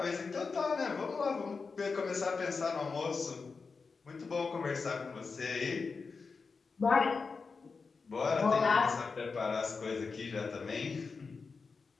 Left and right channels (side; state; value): right; quieter; 4.7 dB